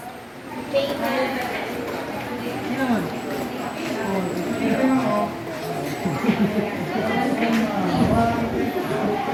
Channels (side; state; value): both; identical; correlation 1.00